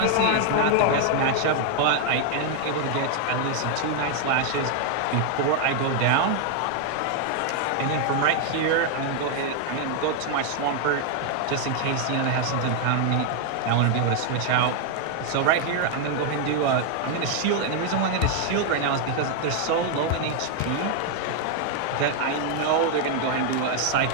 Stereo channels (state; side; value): different; both; correlation 0.00